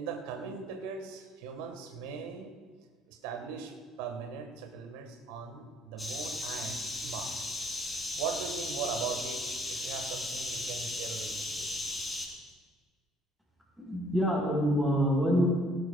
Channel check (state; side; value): normal; both; correlation 0.63